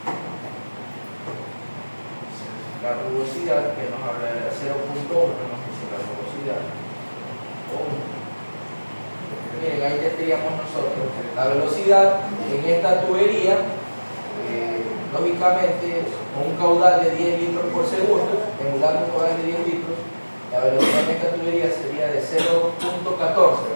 La rugosidad, que nos habla de 0.1, nos dice la rugosidad. Miren, ahí ya tendríamos nosotros la velocidad en esta tubería, lógicamente, con un caudal de 10 litros por segundo, emulando un caudal de 10 litros, la velocidad en esta tubería sería de 0.14,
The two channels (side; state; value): both; inverted; correlation -1.00